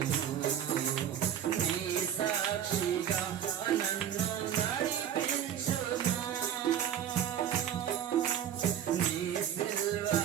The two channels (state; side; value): quieter; left; 9.7 dB